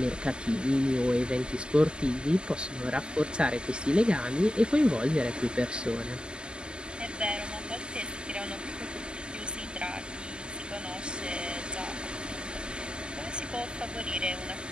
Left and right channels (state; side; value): late; left; 0.051 ms